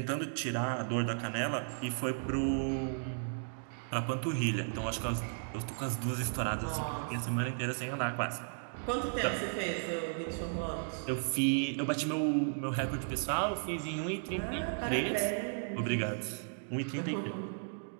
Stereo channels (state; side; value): silent; left; digital silence